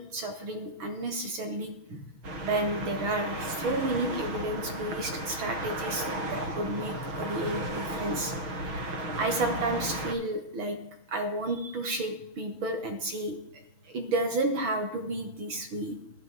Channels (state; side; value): late; left; 6.1 ms